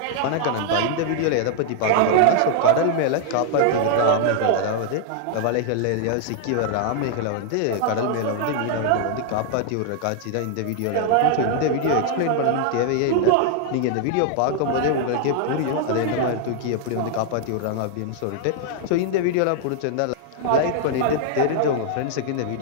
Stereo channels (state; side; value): different; both; correlation 0.00